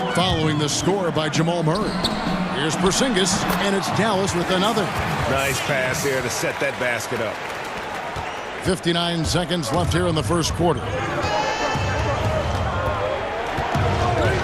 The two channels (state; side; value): identical; both; correlation 1.00